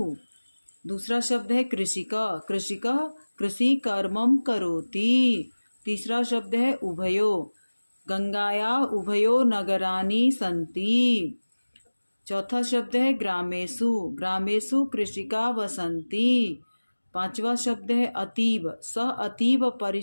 दूसरा शब्द है कृषिका, कृषिका कृषि कर्मम करोति। तीसरा शब्द है उभयो, गंगाया उभयो नगरानि सन्ति। चौथा शब्द है ग्रामेषु, ग्रामेषु कृषिका वसन्ति। पांचवा शब्द है अतीव, सह अतीव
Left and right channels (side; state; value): both; inverted; correlation -1.00